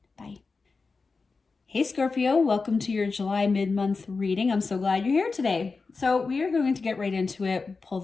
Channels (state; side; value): quieter; right; 4.3 dB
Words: Bye. Hey Scorpio, welcome to your July mid-month reading. I'm so glad you're here today. So we are going to get right into it, pull